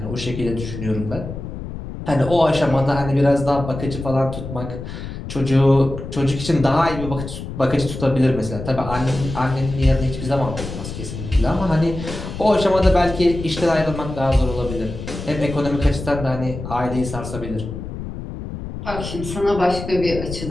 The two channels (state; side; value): noise; left; rumble, 8 dB below the sound